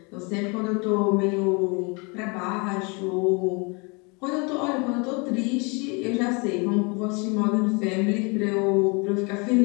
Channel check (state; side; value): quieter; right; 30.7 dB